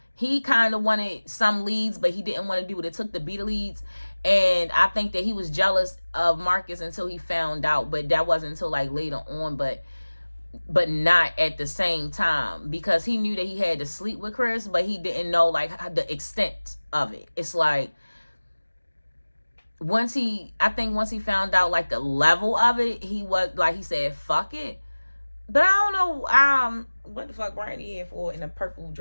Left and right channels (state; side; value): inverted; both; correlation -1.00